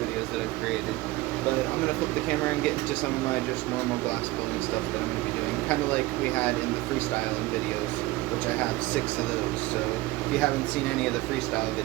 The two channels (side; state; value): left; quieter; 19.4 dB